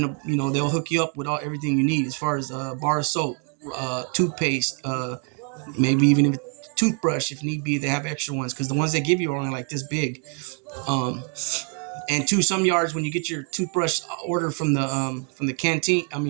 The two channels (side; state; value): left; quieter; 39.8 dB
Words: they'll hook you up with everything you need as far as bar of soap, toothpaste, maybe even a toothbrush if need be. They have extra ones because the ones they give you are only like this big. And some yards, when you get your toothbrush order from the canteen,